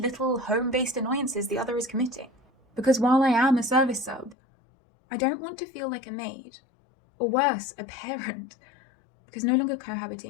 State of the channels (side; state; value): right; drops out; at 4.4 s